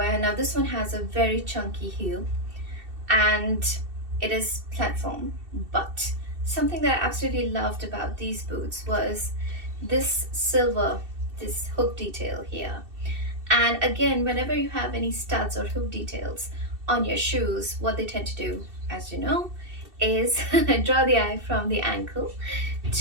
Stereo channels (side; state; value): left; late; 2.7 ms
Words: Now this one has a very chunky heel and it is platform, but something that I absolutely loved about these boots was this hook detail here. And again, whenever you have any studs or hook details on your shoes, what they tend to do, as you know, is draw the eye from the ankle